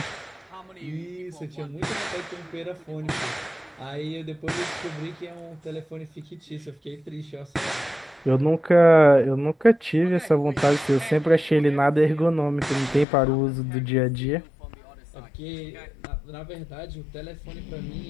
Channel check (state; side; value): drops out; right; at 13.1 s